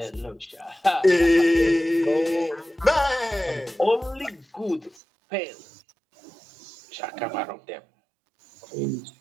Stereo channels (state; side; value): drops out; left; at 5.0 s